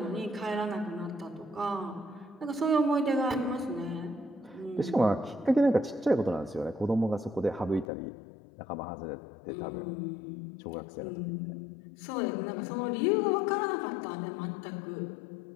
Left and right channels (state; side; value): drops out; right; at 7.9 s